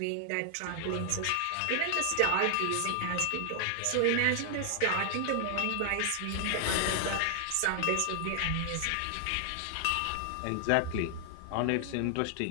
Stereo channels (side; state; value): both; different; correlation 0.00